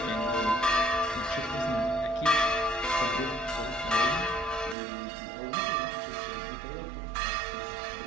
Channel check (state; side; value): drops out; left; at 4.8 s